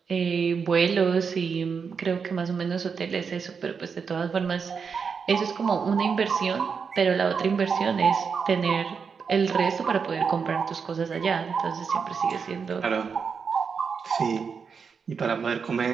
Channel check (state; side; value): quieter; left; 5.9 dB